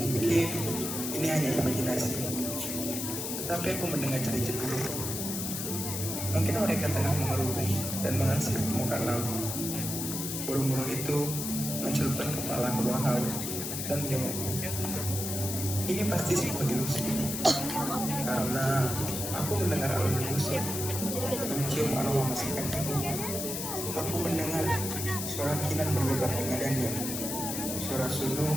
ini hanya imajinasi, tetapi aku mendengar cerita dulu. Mungkin mereka tengah mengerubung dan mengansip permukaan laut. Burung-burung itu mencelupkan kepala ke bawah laut dan menjengukku. Ini pasti sebuah ilusi, karena aku mendengar alun musik, mencium aroma masakan ibu. Aku mendengar suara kinan berdebar dengannya, suara sulung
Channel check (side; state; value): left; noise; hiss, 4 dB below the sound